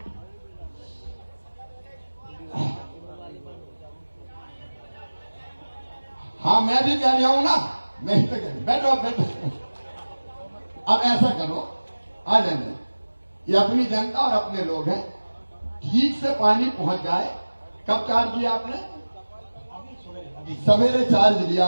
हाँ मैं भी कह रहा हूं ना, मैं ही तो कह रही। बैठो बैठो। अब ऐसा करो, आ जाएंगे, ये अपनी जनता और अपने लोग हैं, ठीक से पानी पहुंच जाए। कब चार्ज लिया आपने? सवेरे चार्ज लिया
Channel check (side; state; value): both; inverted; correlation -1.00